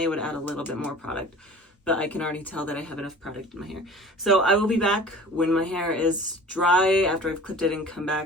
I would add a little bit more product, but I can already tell that I have enough product in my hair. So I will be back when my hair is dry, after I've clipped it, and come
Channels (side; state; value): both; normal; correlation 0.42